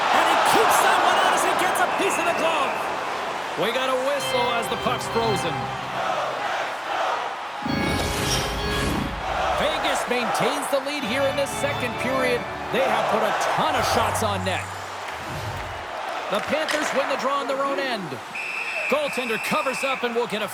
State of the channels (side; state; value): both; identical; correlation 1.00